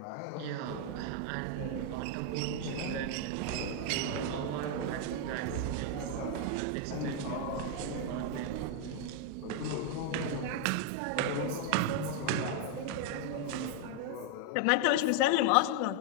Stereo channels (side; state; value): both; different; correlation 0.00